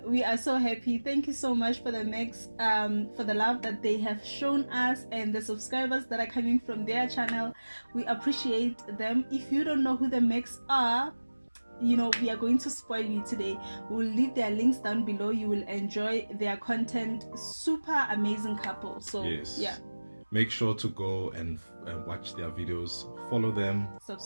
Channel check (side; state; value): both; inverted; correlation -1.00